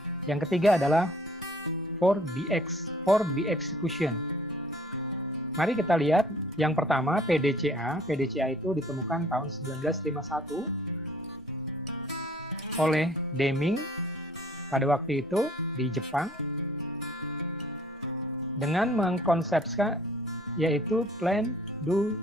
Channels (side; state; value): both; normal; correlation 0.56